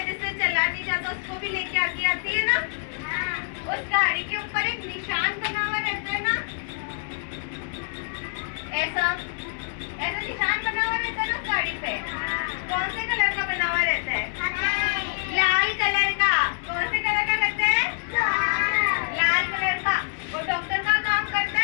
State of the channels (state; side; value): silent; right; digital silence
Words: जिससे चला नहीं जाता, उसको भी लेके आती है ना। उस गाड़ी के ऊपर एक निशान बना हुआ रहता है ना, ऐसा निशान बना हुआ रहता है ना उस गाड़ी पे। कौन से कलर का बना हुआ रहता है? लाल कलर का। कौन से कलर का रहता है? लाल कलर का। वो डॉक्टर का काम करता